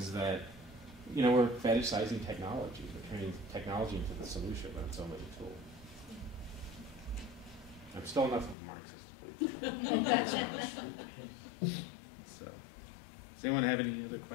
that, you know, we're fetishizing technology. We're turning technology into the solution, but it's only a tool. I'm still enough of a Marxist, please. So, does anyone have any other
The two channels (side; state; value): right; drops out; at 8.6 s